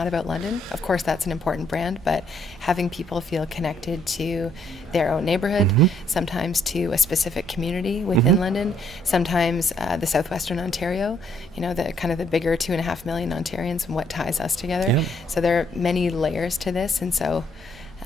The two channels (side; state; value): both; normal; correlation 0.69